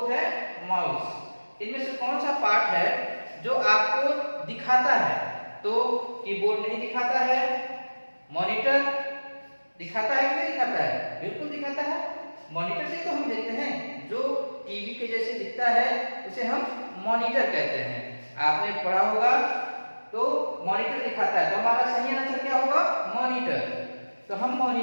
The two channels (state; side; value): inverted; both; correlation -1.00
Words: है माउस। इनमें से कौन सा पार्ट है जो आपको दिखाता है? तो कीबोर्ड नहीं दिखाता है, मॉनिटर दिखाता है कि नहीं दिखाता है? बिल्कुल दिखाता है। मॉनिटर से तो हम देखते हैं, जो टीवी के जैसे दिखता है उसे हम मॉनिटर कहते हैं। आपने पढ़ा होगा, तो मॉनिटर दिखाता है। तो हमारा सही आंसर क्या होगा? मॉनिटर। तो हम